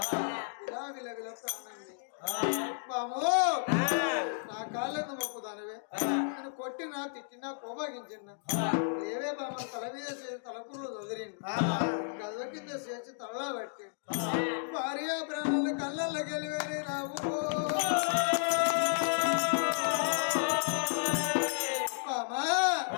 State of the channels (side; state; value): right; silent; digital silence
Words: ఇలా విలవిల ప్రాణండి బాము నా కాళ్ళను మొక్కుదానివే నేను కొట్టినా తిట్టినా కోపగించిన లేవే బామ తల మీద చేసి తలకుర్లు వదిలిండు గదుల కింద చేసి తలలా పట్టి భార్య ప్రాణాలు కళ్ళల్లో గెలివేరే రావు బామా